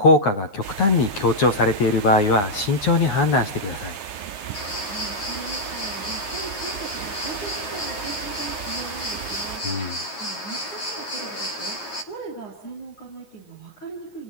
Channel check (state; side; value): late; right; 9.6 ms